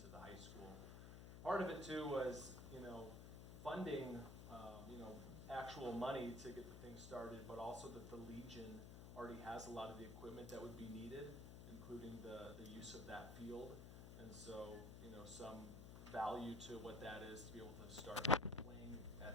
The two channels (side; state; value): left; noise; hum, 9 dB below the sound